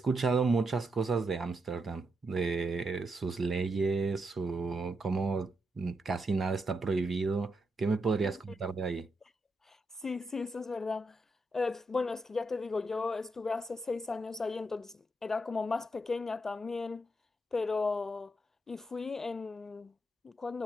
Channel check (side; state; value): both; normal; correlation 0.82